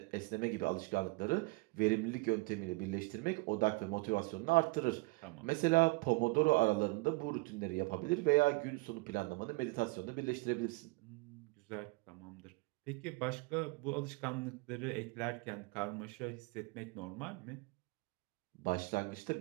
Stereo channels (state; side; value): quieter; left; 25.8 dB